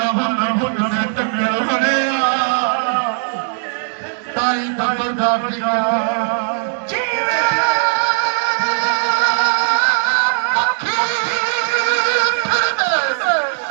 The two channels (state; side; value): silent; left; 63 dB below the other